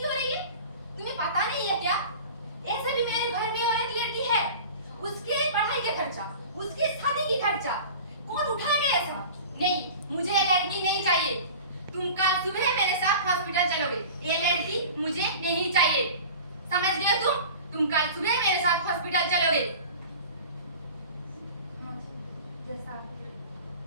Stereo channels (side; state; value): both; inverted; correlation -0.38